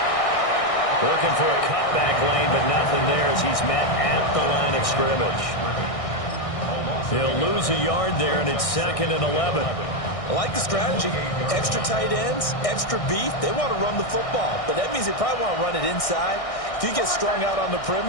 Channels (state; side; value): late; right; 1.6 ms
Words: Looking for a cutback lane, but nothing there as he's met at the line of scrimmage. He'll lose a yard there, and it's 2nd and 11. I like the strategy. Extra tight ends, extra beef. They want to run the football, but that means they probably want to run it inside. If you get strung out on the